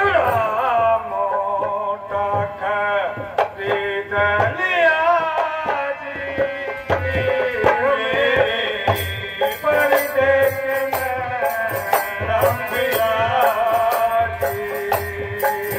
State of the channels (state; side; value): identical; both; correlation 1.00